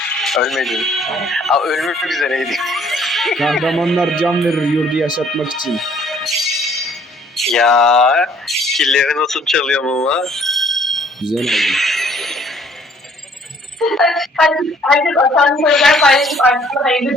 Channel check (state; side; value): normal; both; correlation 0.60